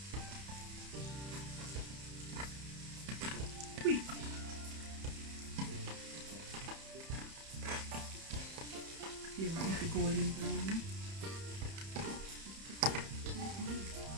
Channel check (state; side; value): late; left; 31 ms